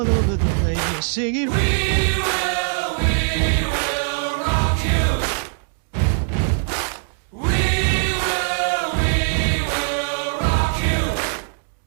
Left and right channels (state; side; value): silent; left; digital silence